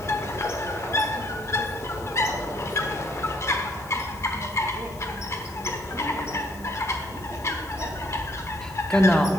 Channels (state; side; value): noise; left; hiss, 21 dB below the sound